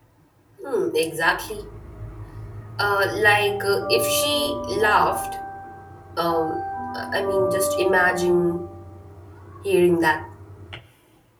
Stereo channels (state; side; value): identical; both; correlation 1.00